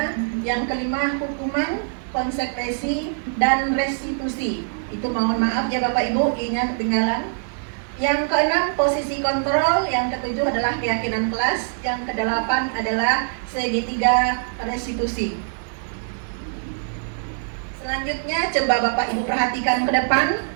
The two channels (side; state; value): left; silent; digital silence